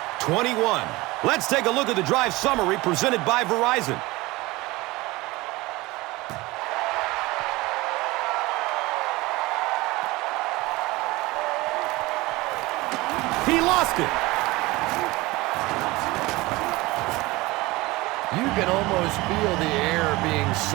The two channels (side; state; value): left; quieter; 21.1 dB